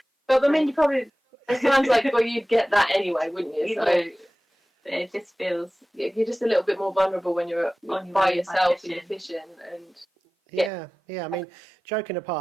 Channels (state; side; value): normal; both; correlation 0.97